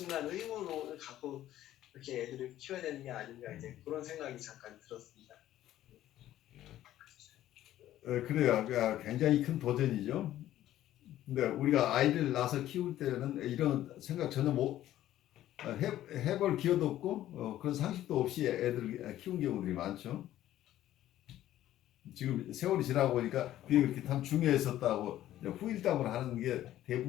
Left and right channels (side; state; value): right; quieter; 13.3 dB